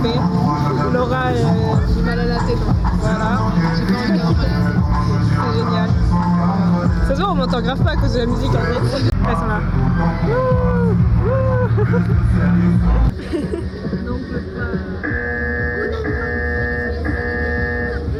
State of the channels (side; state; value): both; identical; correlation 1.00